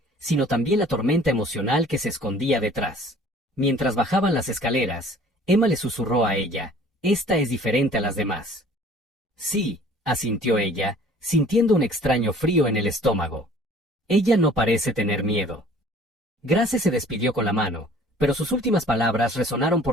sino también la tormenta emocional que se escondía detrás. Mientras bajaban las escaleras, Emma le susurró a ella: Esta es diferente a las demás. Sí, asintió ella, sintiendo un extraño frío en el estómago. Ella no parece tener miedo. Grace se despidió con la mano, pero sus últimas palabras resonaron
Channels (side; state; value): both; normal; correlation 0.52